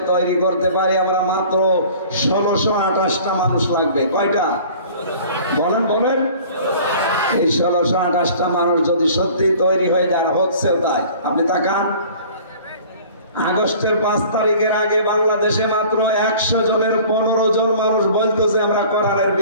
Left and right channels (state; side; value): inverted; both; correlation -0.47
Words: তৈরি করতে পারি আমরা, মাত্র 1628টা মানুষ লাগবে। কয়টা? বলেন বলেন। এই 1628টা মানুষ যদি সত্যি তৈরি হয়ে যায়, হচ্ছেও তাই। আপনি তাকান, আগস্টের 5 তারিখের আগে বাংলাদেশে মাত্র 100 জনের 15 জন মানুষ বলতো যে আমরা কোরআনের